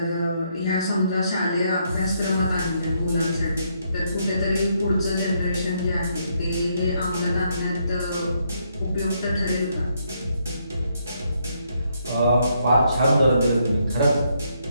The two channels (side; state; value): both; inverted; correlation -0.75